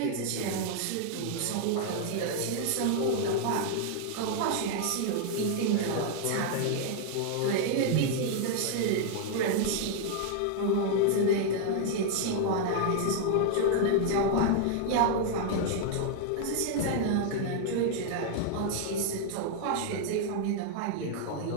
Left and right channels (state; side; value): different; both; correlation 0.00